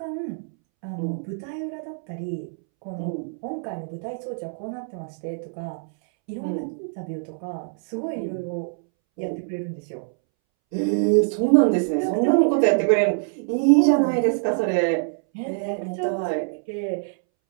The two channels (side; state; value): left; silent; 62 dB below the other